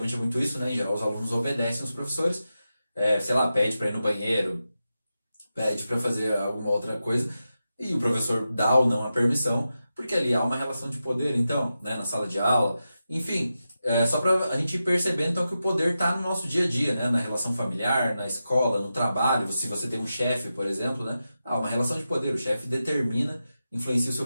é muito isso, né? Em geral, os alunos obedecem os professores. Sei lá, pede para ir no banheiro, pede para fazer alguma outra coisa e o professor dá ou não a permissão, porque ali há uma relação de poder, então, né, na sala de aula. Enfim, só para a gente ir percebendo então, que o poder está no nosso dia a dia, né, na relação familiar, na escola, no trabalho. Se você tem um chefe, por exemplo, né, há uma relação de poder. O chefe determina, influencia o seu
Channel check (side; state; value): both; inverted; correlation -0.91